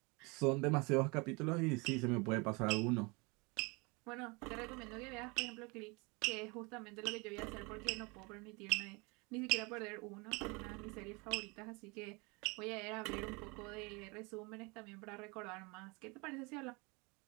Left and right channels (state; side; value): quieter; left; 28.3 dB